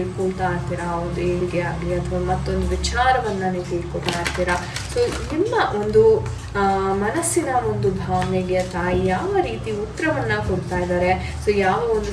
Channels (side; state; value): both; identical; correlation 1.00